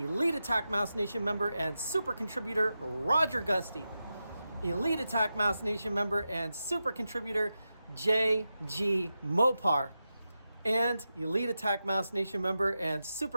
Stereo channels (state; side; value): inverted; both; correlation -0.91